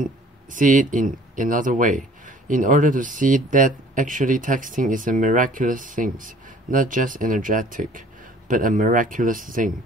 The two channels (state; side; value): normal; both; correlation 0.53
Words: it in another way, in order to see that actually texting is a miraculous thing, not just energetic, but a miraculous thing,